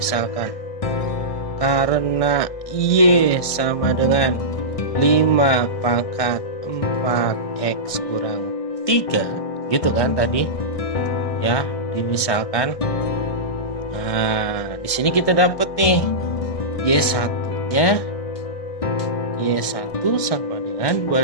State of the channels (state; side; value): late; right; 1.6 ms